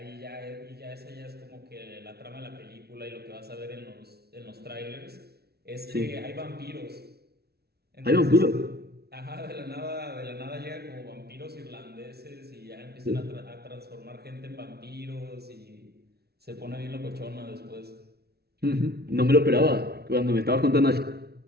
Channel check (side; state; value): left; late; 0.46 ms